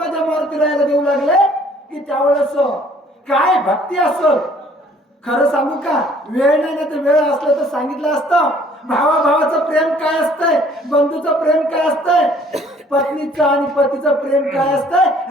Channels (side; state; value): both; normal; correlation 0.58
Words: मारुतीरायाला देऊ लागले की त्यावेळेस काय भक्ती असल खरं सांगू का वेळ नाही तर वेळ असलं तर सांगितलं असतं भावाभावाचं प्रेम काय असतंय बंधूचं प्रेम काय असतंय पत्नीचं आणि पतीचं प्रेम काय